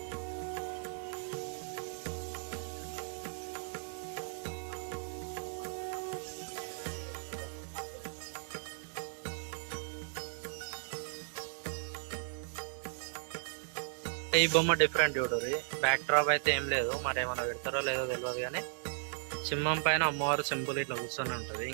ఈ బొమ్మ డిఫరెంట్ చూడరు. బ్యాక్ డ్రాప్ అయితే ఏం లేదు, మరి ఏమైనా పెడతారో లేదో తెలియదు. కానీ సింహం పైన అమ్మవారు సింపుల్ ఇట్లా కూర్చొని ఉంటది.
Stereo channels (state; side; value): silent; left; 54 dB below the other